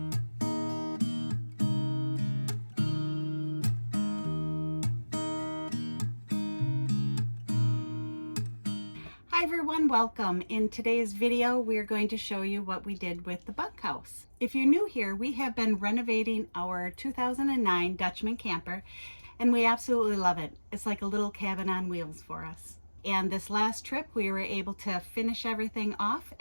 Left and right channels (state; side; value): inverted; both; correlation -1.00